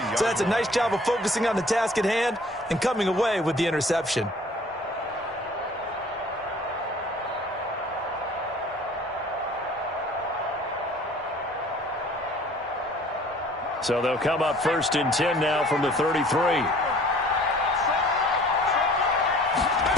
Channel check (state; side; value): normal; both; correlation 0.51